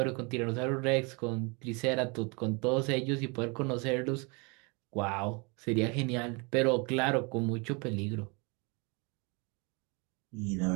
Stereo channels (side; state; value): left; quieter; 30.6 dB